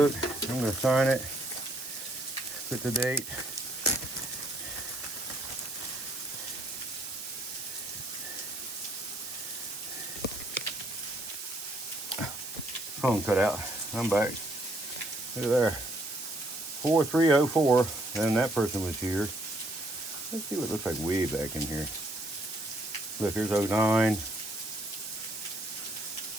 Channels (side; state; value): right; noise; hiss, 10 dB below the sound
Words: I'm going to sign it. Put the date. Phone cut out. I'm back. Look at there. 4304. And that person was here. Let's see what it looks like way back in here. Look, here's 09.